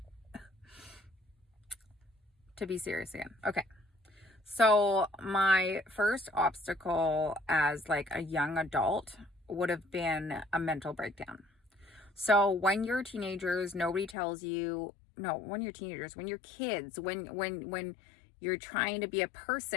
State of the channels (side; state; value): right; drops out; at 14.2 s